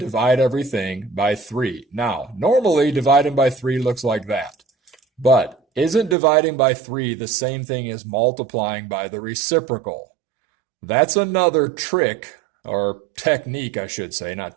everything by 3. Now, normally dividing by 3 looks like that. But isn't dividing by 3 the same thing as multiplying by the reciprocal? That's another trick, or technique I should say, not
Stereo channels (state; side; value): drops out; left; at 6.2 s